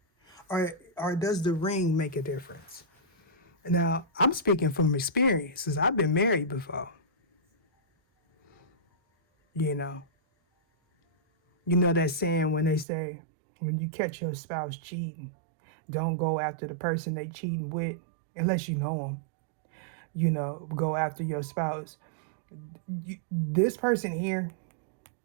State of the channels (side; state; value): left; drops out; at 12.9 s